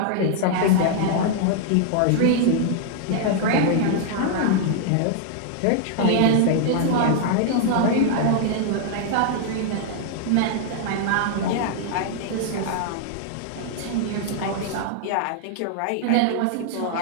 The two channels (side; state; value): both; different; correlation -0.01